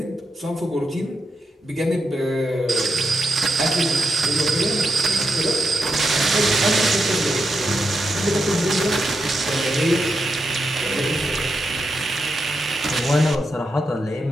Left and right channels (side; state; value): both; normal; correlation 0.84